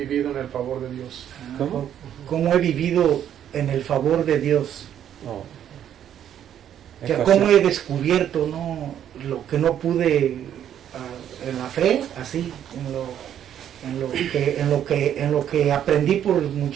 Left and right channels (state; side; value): quieter; left; 10.1 dB